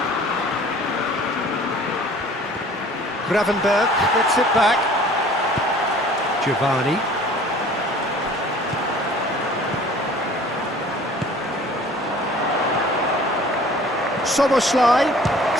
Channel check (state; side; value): normal; both; correlation 0.49